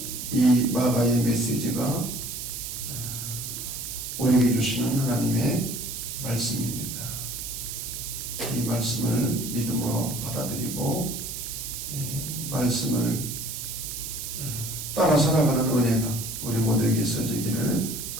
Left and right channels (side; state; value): right; noise; hiss, 6 dB below the sound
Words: 이 마가의 메시지가 우리에게 주시는 하나님의 말씀입니다. 이 말씀을 믿음으로 받아들이고 말씀을 따라 살아가는 은혜가 우리 모두에게 있어지기를